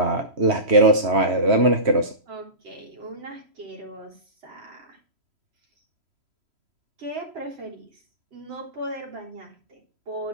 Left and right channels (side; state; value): left; late; 3.0 ms